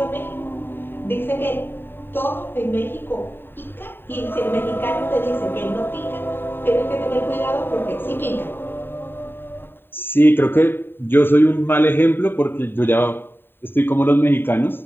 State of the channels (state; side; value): late; right; 0.10 ms